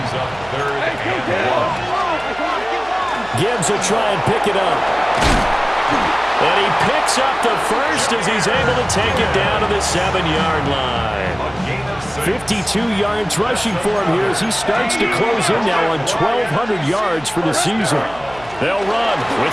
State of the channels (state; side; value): noise; right; hum, 21 dB below the sound